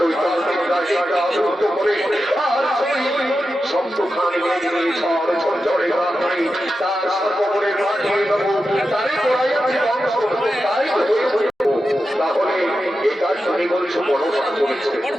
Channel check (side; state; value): both; normal; correlation 0.90